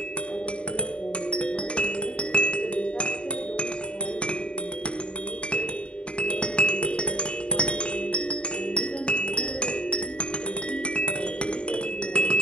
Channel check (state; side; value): late; right; 0.057 ms